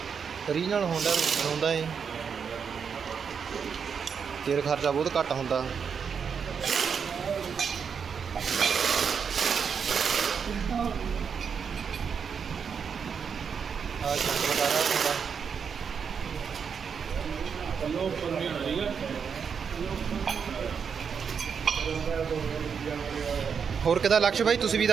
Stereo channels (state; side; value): quieter; left; 6.6 dB